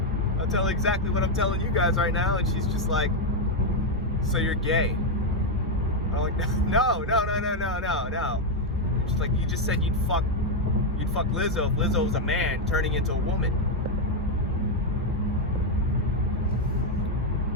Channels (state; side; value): normal; both; correlation 0.02